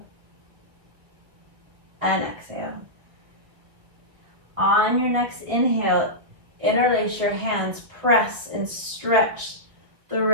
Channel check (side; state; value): left; late; 1.7 ms